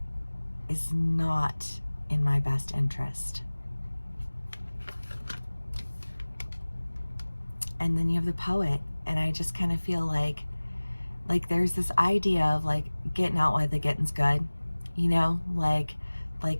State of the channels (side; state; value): both; inverted; correlation -1.00